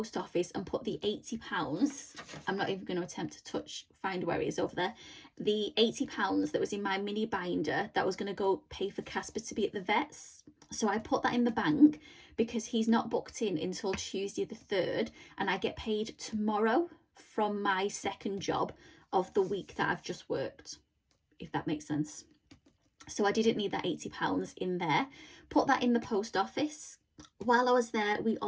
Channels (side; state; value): both; identical; correlation 1.00